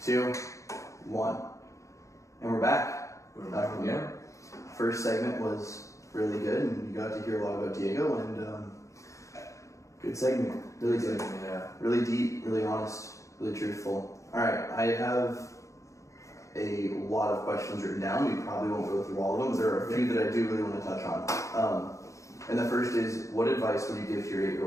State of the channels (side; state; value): right; late; 0.15 ms